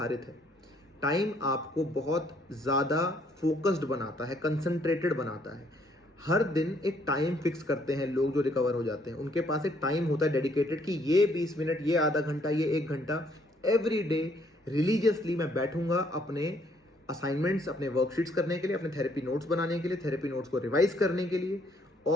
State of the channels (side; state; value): both; normal; correlation 0.66